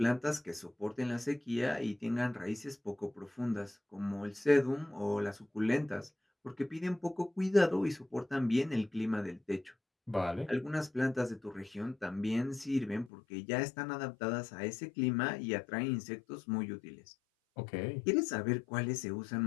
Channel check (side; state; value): right; drops out; at 13.1 s